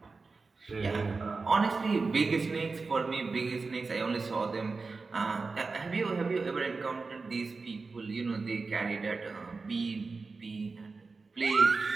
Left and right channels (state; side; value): quieter; left; 4.2 dB